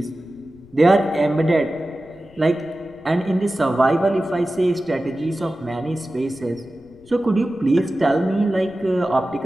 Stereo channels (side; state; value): left; noise; rumble, 26 dB below the sound